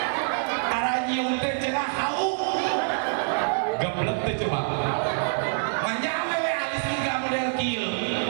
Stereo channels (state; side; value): silent; left; digital silence